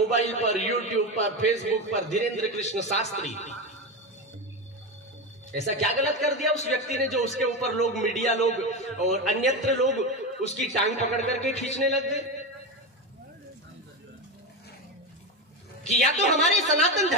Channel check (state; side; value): normal; both; correlation 0.16